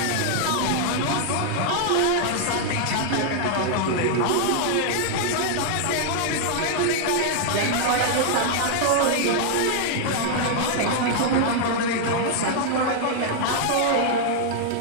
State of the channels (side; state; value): both; different; correlation -0.01